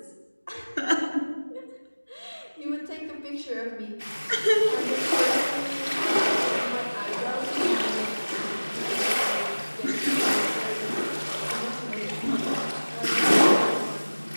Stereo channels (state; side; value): inverted; both; correlation -1.00